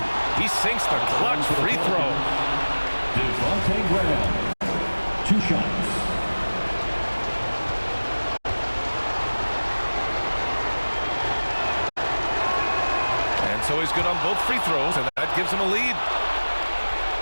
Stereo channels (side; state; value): both; inverted; correlation -1.00